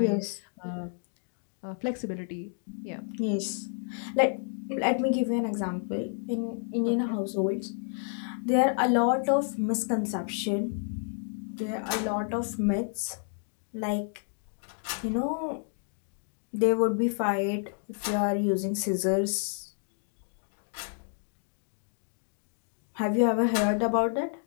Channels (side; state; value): right; silent; 58 dB below the other